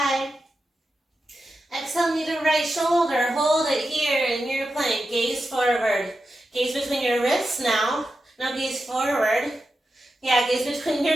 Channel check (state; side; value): normal; both; correlation 0.90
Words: Exhale, knee to right shoulder. Hold it here in your plank. Gaze forward. Gaze between your wrists now. Now gaze forward. Yeah, gaze between